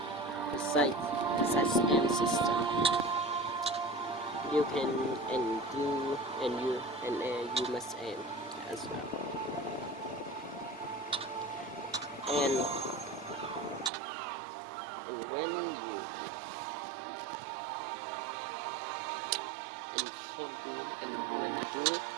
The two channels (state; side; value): drops out; left; at 13.9 s